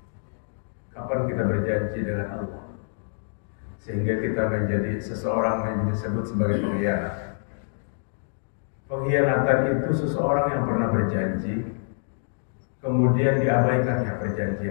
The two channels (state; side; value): silent; right; digital silence